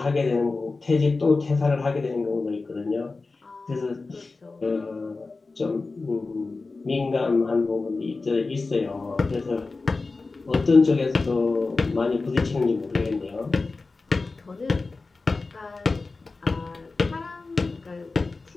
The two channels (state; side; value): quieter; right; 3.8 dB